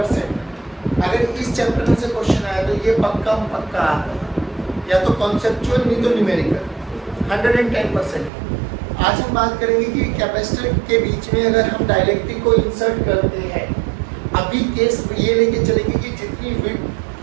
अगर इस चैप्टर में से क्वेश्चन आया तो ये पक्का आता है, या तो कॉन्सेप्चुअल नहीं तो न्यूमेरिकल 110%। आज हम बात करेंगे कि कैपेसिटर के बीच में अगर हम डाइलेक्ट्रिक को इंसर्ट करते हैं, अभी केस ये लेके चलेंगे कि जितनी विड्थ,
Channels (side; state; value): left; drops out; at 8.3 s